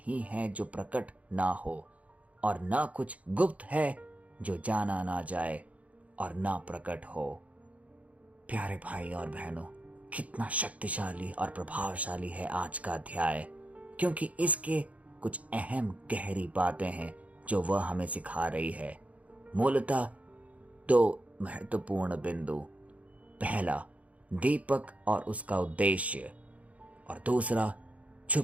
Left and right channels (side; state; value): left; late; 0.068 ms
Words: है जो प्रकट ना हो, और ना कुछ गुप्त है जो जाना ना जाए और ना प्रकट हो। प्यारे भाई और बहनों, कितना शक्तिशाली और प्रभावशाली है आज का अध्याय, क्योंकि इसके कुछ अहम गहरी बातें हैं जो वह हमें सिखा रही है। मूलतः दो महत्वपूर्ण बिंदु, पहला दीपक और उसका उद्देश्य, और दूसरा